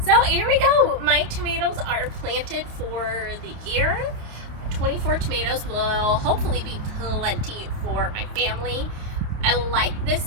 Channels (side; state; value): left; late; 28 ms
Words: So here we go. My tomatoes are planted for the year. 24 tomatoes will hopefully be plenty for my family. I like this